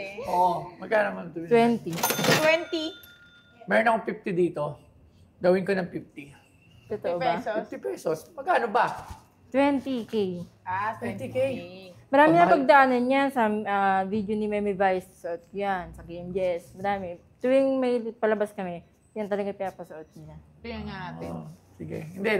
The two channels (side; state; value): both; identical; correlation 1.00